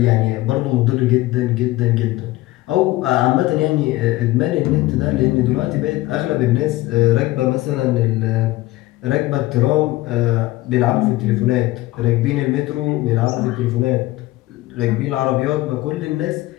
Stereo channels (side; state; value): right; quieter; 18.1 dB